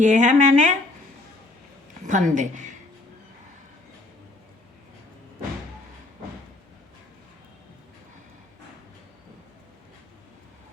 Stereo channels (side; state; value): right; quieter; 3.1 dB